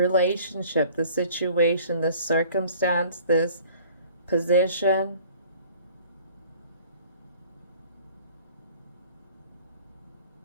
the situation, this circumstance, this position.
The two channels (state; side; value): inverted; both; correlation -0.51